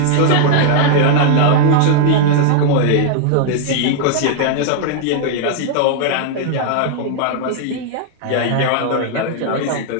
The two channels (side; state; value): both; different; correlation 0.00